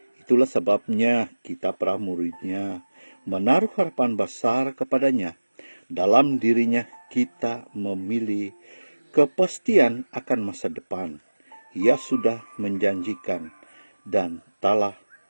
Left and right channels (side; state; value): both; inverted; correlation -1.00